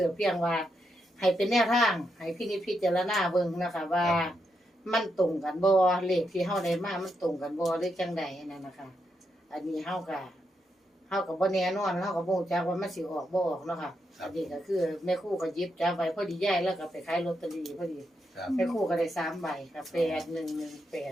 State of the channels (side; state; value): both; normal; correlation 0.82